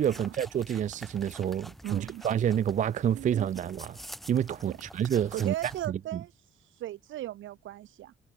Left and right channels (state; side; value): quieter; left; 9.2 dB